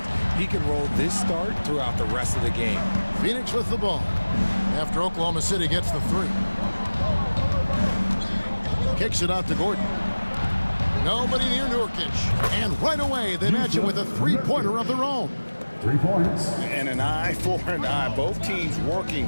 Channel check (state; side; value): inverted; both; correlation -1.00